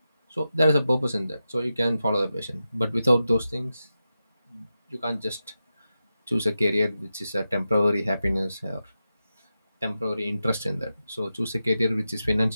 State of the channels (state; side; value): inverted; both; correlation -0.91